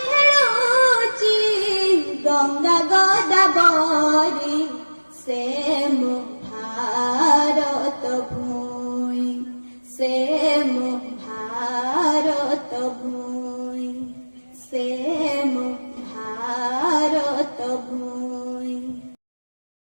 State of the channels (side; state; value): both; inverted; correlation -1.00